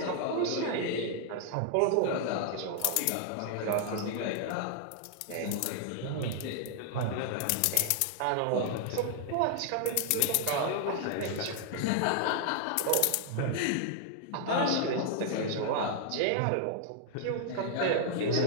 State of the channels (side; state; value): both; different; correlation -0.01